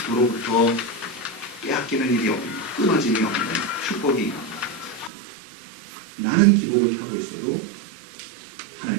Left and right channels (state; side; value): drops out; left; at 5.1 s